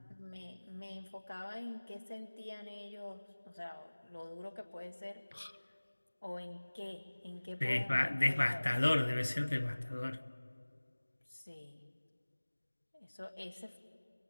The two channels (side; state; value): both; inverted; correlation -1.00